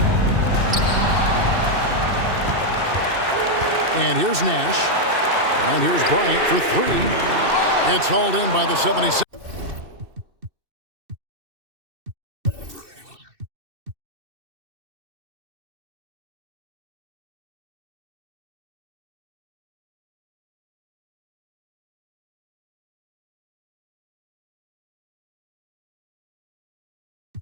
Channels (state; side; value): late; left; 2.6 ms